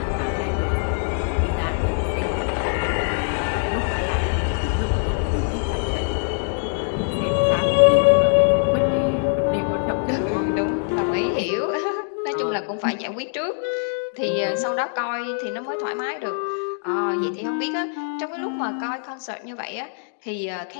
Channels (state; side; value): silent; right; digital silence